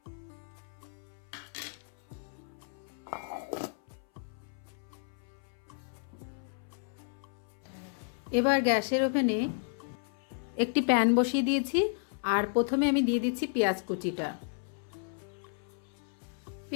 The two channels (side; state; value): right; silent; 56 dB below the other